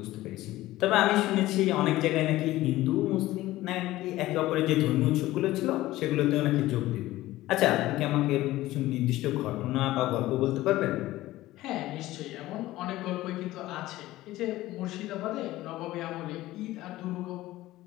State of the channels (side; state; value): right; quieter; 16.6 dB